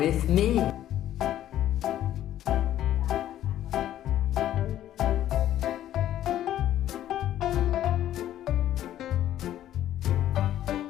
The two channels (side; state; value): right; quieter; 12.3 dB